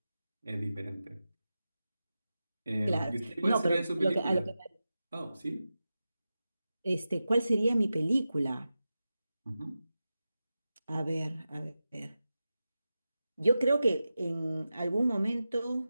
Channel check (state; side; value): inverted; both; correlation -0.93